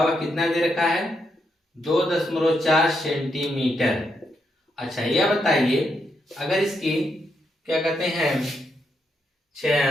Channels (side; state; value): both; normal; correlation 0.80